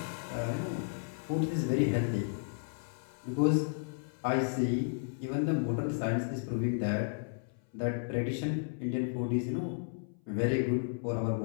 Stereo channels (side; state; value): right; silent; 55 dB below the other